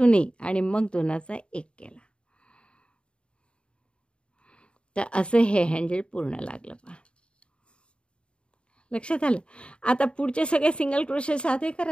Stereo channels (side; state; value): right; late; 0.055 ms